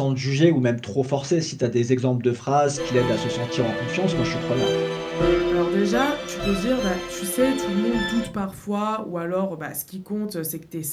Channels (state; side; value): identical; both; correlation 1.00